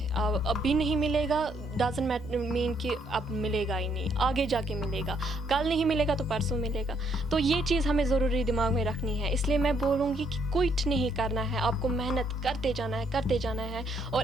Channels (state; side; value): normal; both; correlation 0.70